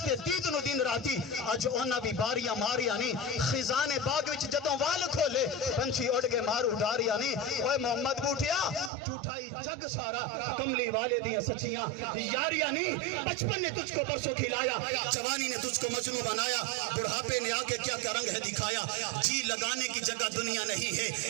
دید نو دن راتی، اج اونا بھی باریاں ماریاں نہیں۔ خزان باغ وچ جدوں وال کھولے پنچھی اڑ کے مارو ڈاریاں نہیں۔ اوے محمد بوٹیا جھوٹائی جگ سارا، کملی والے دیاں سچیاں یاریاں نہیں۔ بچپن نے تجھ کو برسوں کھلایا، جوانی نے تجھ کو مجنوں بنایا، بڑھاپے نے آ کے کیا کیا رنگ ہے دکھایا۔ جی لگانے کی جگہ دنیا نہیں ہے،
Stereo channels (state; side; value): drops out; left; at 8.9 s